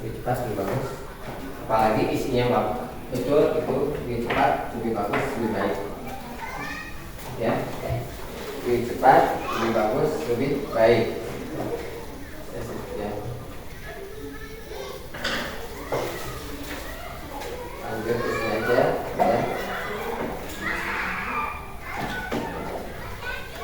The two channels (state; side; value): identical; both; correlation 1.00